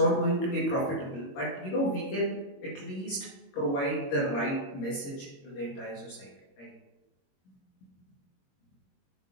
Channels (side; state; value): right; late; 22 ms